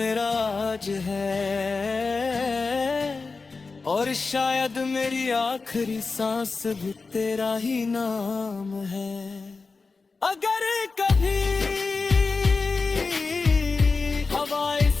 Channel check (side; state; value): right; quieter; 4.2 dB